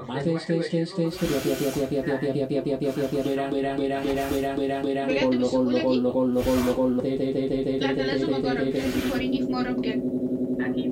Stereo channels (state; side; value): identical; both; correlation 1.00